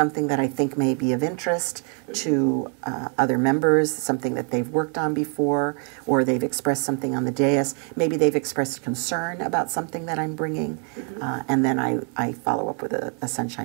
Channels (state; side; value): quieter; left; 37.7 dB